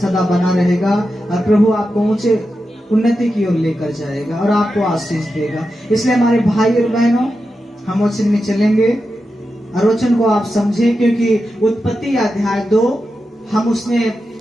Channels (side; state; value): both; normal; correlation 0.90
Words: बना रहेगा और प्रभु आपको ऊंचे उन्नति की ओर लेकर जाएगा और आपको आशीष देगा। इसलिए हमारे भाई और बहनों, हम वचन में चलेंगे और वचन को आप समझें, क्योंकि उत्पत्ति अध्याय 2, हम